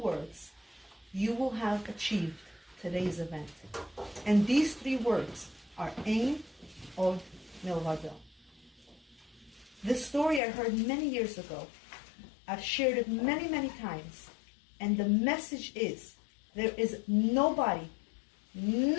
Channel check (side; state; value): right; drops out; at 10.4 s